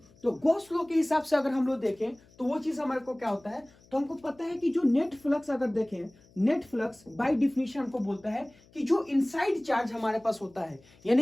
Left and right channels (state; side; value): noise; left; hum, 28 dB below the sound